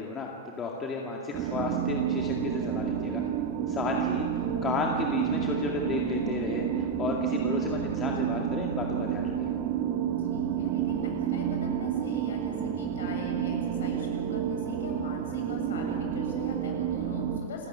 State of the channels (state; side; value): quieter; left; 4.7 dB